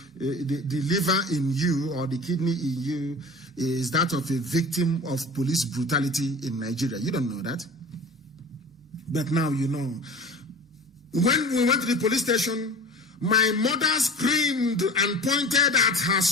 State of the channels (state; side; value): normal; both; correlation 0.39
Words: liver in you or the kidney in you is that of a victim of police brutality in Nigeria. You don't know that. But now you know. When we went to the police station, my mother screamed and pointed at her